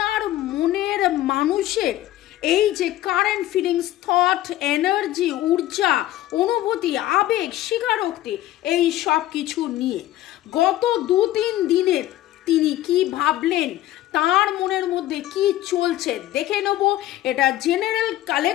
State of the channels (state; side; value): quieter; right; 14.6 dB